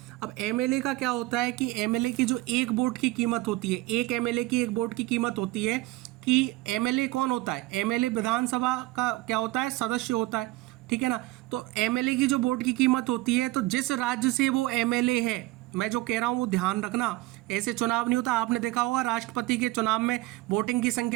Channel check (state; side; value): quieter; left; 18.8 dB